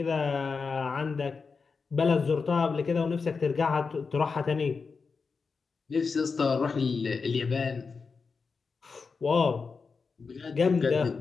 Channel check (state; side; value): quieter; right; 4.9 dB